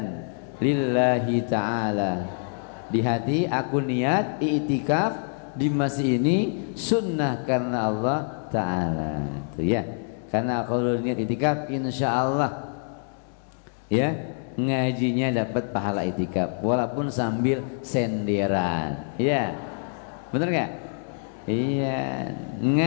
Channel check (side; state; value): right; silent; 61 dB below the other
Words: lillahi ta'ala. Di hati aku niat i'tikaf di masjid ini sunnah karena Allah Ta'ala. Itu ya. Karena kalau niat i'tikaf insyaallah ya ngajinya dapat pahala i'tikaf walaupun sambil senderan. Ya. Bener nggak? Iya,